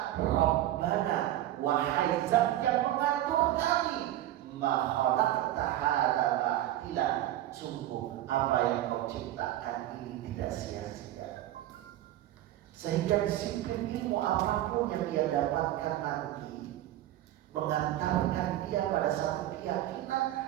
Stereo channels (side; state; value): left; quieter; 13.8 dB